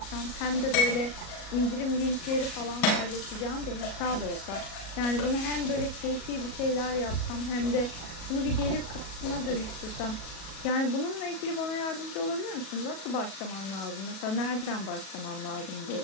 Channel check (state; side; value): late; right; 37 ms